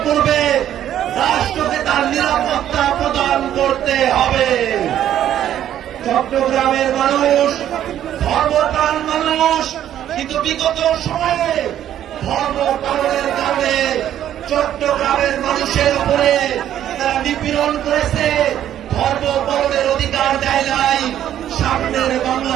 করবে, রাষ্ট্রকে তার নিরাপত্তা প্রদান করতে হবে। চট্টগ্রামের মানুষ ধর্মপ্রাণ মানুষ, কিন্তু বিগত সময়ে ধর্ম পালনের কারণে চট্টগ্রামের মানুষের উপরে তারা নিপীড়ন করেছে, ধর্ম পালনের অধিকার দেয় নাই। সামনের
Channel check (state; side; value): quieter; left; 11.1 dB